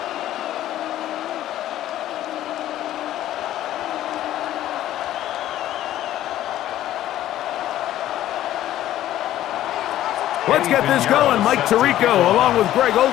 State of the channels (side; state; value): right; quieter; 13.2 dB